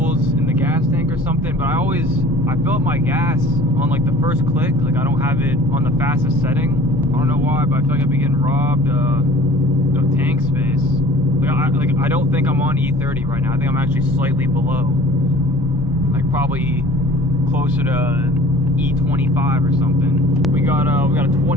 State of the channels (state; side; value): normal; both; correlation 0.47